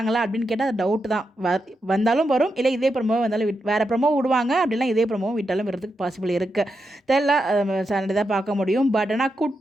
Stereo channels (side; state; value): both; normal; correlation 0.86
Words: அப்படின்னு கேட்டால் அது டவுட் தான். வந்தாலும் வரும், இல்லை இதே ப்ரோமோ வந்தாலும் வேறு ப்ரோமோ விடுவாங்க, அப்படின்னா இதே ப்ரோமோ விட்டாலும் வரதுக்கு பாசிபிள் இருக்குது. தெரியல, சண்டே தான் பார்க்க முடியும். பட் ஆனால்